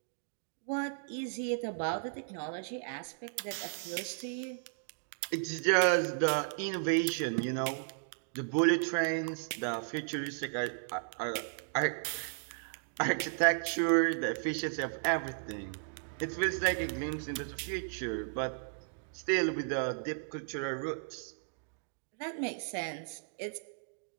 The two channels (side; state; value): left; silent; digital silence